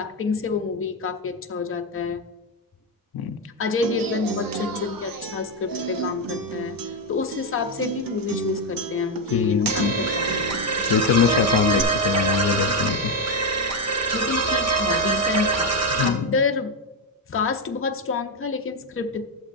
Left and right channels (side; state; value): both; normal; correlation 0.07